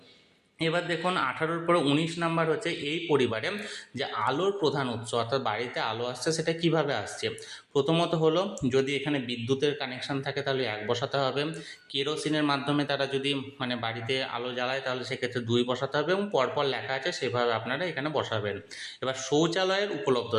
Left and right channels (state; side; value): identical; both; correlation 1.00